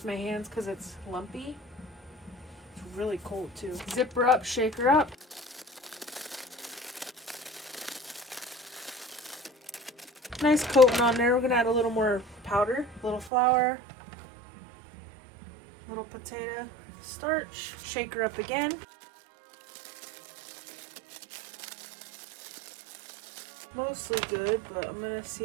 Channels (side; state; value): left; drops out; at 13.3 s